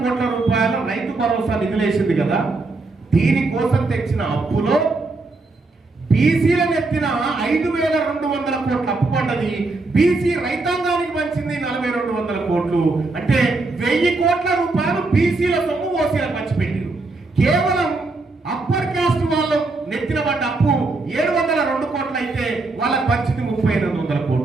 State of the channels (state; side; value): quieter; left; 3.4 dB